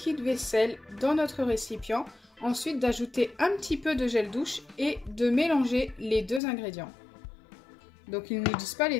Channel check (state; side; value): drops out; right; at 6.4 s